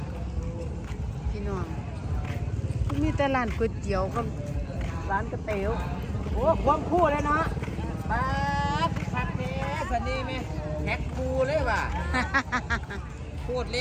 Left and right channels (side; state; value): both; identical; correlation 1.00